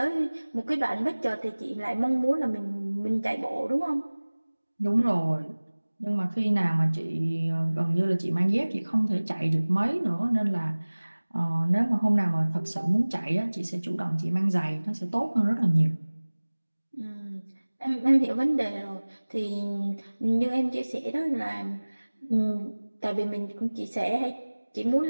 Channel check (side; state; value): both; inverted; correlation -1.00